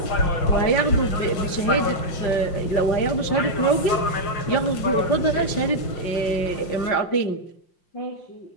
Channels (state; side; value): late; right; 5.6 ms